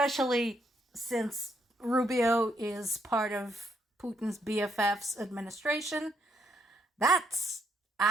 since Rubio is part of Putin's BFF's administration. That's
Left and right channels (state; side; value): normal; both; correlation 0.75